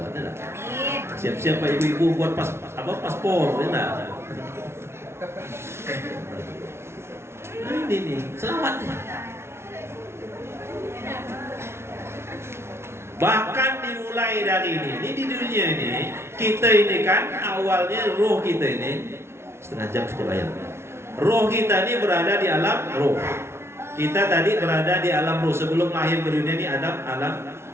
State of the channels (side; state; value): left; late; 0.12 ms